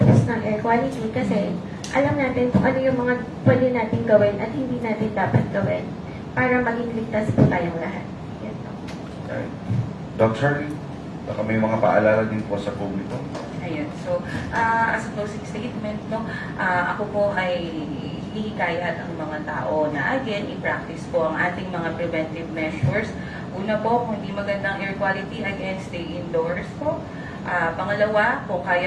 ng air quality kasi alam natin kung ano yung mga pwede natin gawin at hindi natin dapat gawin para maging ligtas po tayong lahat. Yan po. Doc Charlie, baka may mga paalala din po sa publiko. Ayun. So, as a closing statement, no, ako po ay hihikayat ang mga tao na again, i-practice po ang ating mga preventive measures. Una po, kung hindi magandang air quality, again, stay indoors po. Pangalawa, kung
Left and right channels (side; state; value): both; identical; correlation 1.00